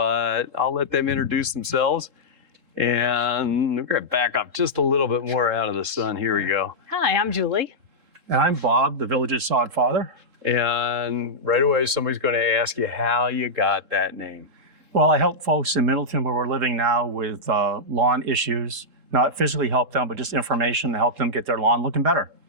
I'll let them introduce themselves. And we're gonna back up just a little bit more out of the sun. Here we go. Hi, I'm Julie. And I'm Bob, the Villages sod father. And right away, somebody's going to ask you how you got that name. Well, I help folks in Middleton where we're living now with lawn issues, not physically help them, but just information to help them get their lawn looking better.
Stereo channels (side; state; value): left; late; 3.7 ms